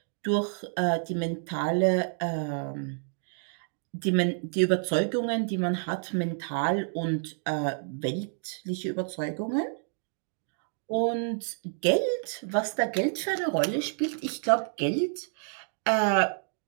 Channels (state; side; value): silent; left; digital silence